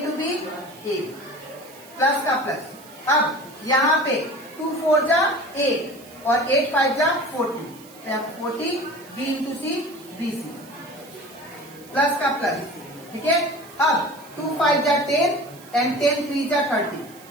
B a plus का प्लस। अब यहाँ पे 2 4 जा 8 और 8 5 जा 40, 40 b into C B C plus का प्लस। ठीक है, अब 2 5 जा 10 एंड 10 3 जा 30,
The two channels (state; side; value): noise; right; hiss, 22 dB below the sound